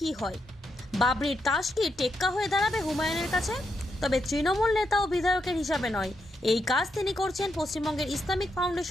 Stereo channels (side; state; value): both; normal; correlation 0.83